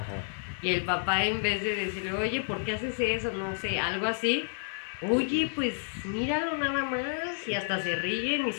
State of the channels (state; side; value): silent; right; digital silence